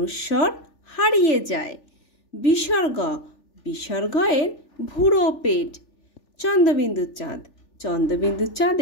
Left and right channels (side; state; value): right; late; 3.4 ms